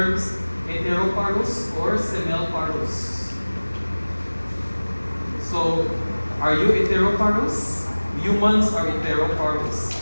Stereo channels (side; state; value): both; inverted; correlation -1.00